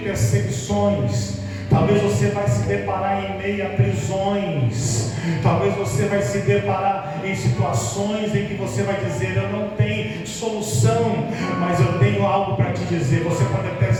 talvez você vai se deparar em meio a prisões, talvez você vai se deparar em situações em que você vai dizer: eu não tenho solução, mas eu tenho algo para te dizer. Você pode até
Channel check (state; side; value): identical; both; correlation 1.00